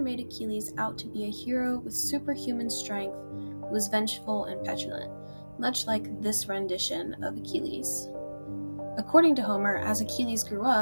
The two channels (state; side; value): inverted; both; correlation -1.00